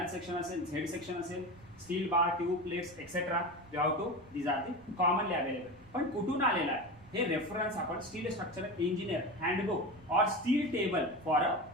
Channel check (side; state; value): right; noise; rumble, 24 dB below the sound